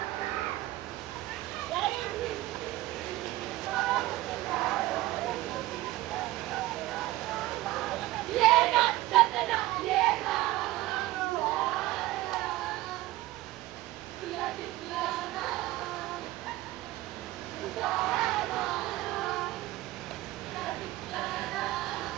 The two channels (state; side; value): quieter; left; 17.5 dB